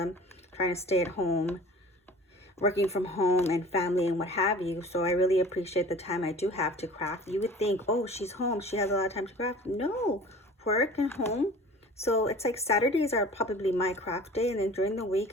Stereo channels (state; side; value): normal; both; correlation 0.43